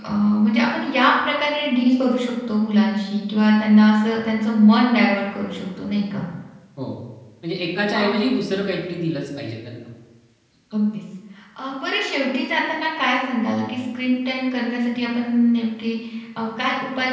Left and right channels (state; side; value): identical; both; correlation 1.00